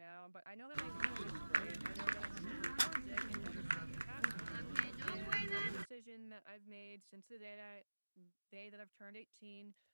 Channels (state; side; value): inverted; both; correlation -1.00